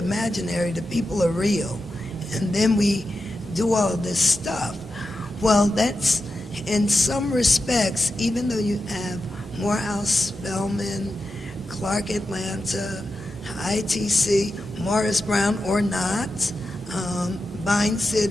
the people are real. And then we do all this stuff. Well, that's, in some respects, even though you have Morehouse, Spelman, Clark Atlanta, ITC, Morris Brown or not, Vine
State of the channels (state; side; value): normal; both; correlation 0.90